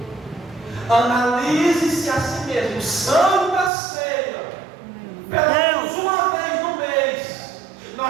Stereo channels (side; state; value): left; drops out; at 3.7 s